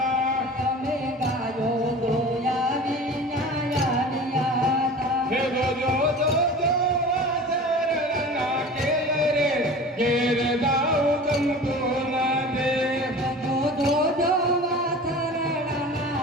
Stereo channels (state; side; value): normal; both; correlation 0.38